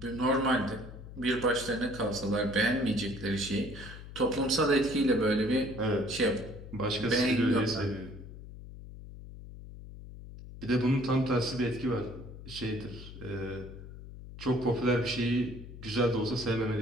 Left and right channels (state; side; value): noise; left; hum, 14 dB below the sound